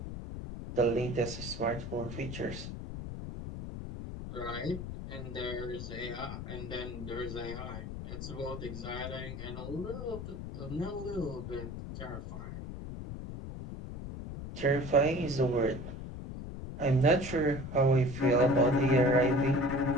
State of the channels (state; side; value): noise; left; rumble, 8 dB below the sound